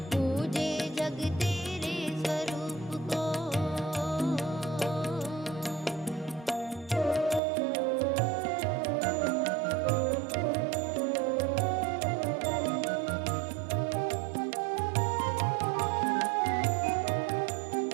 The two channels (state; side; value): drops out; left; at 7.4 s